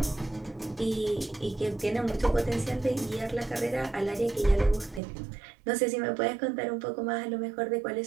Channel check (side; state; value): left; drops out; at 5.0 s